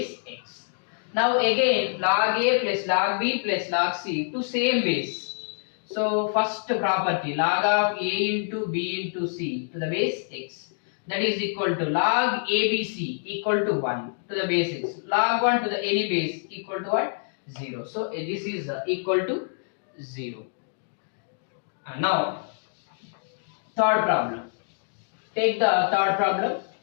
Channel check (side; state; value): right; silent; digital silence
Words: x. Now again log a plus log b plus log c to same base. So first property log of a into b into c to the base x, that is equal to log abc equal to 1 to the base x, log 1 to the any base equal to what? 0. So this is equal to 0. Now third problem. Take the third problem.